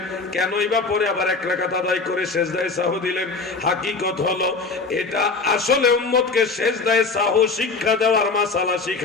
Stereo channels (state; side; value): quieter; right; 4.1 dB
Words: কেনই বা পরে আবার 1 রাকাত আদায় করে সেজদায় সাহু দিলেন? হাকিকত হলো এটা আসলে উম্মতকে সেজদায় সাহু শিক্ষা দেওয়ার মাসালা